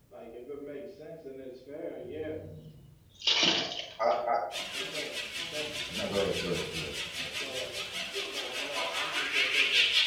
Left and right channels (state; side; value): identical; both; correlation 1.00